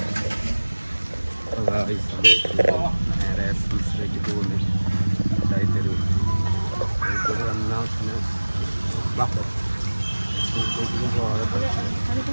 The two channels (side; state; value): both; inverted; correlation -1.00